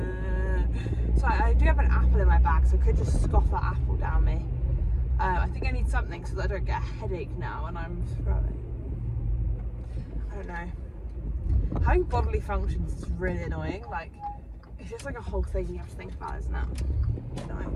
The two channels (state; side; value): identical; both; correlation 1.00